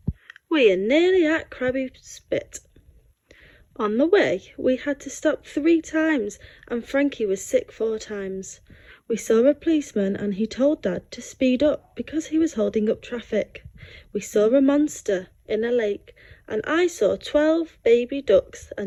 we are nearly at Krabby Spit. On the way, we had to stop 3 times and Frankie was sick 4 times. We saw a policeman and he told Dad to speed up because he was holding up traffic. We saw a monster in a lake and I saw 12 baby ducks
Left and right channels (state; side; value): identical; both; correlation 1.00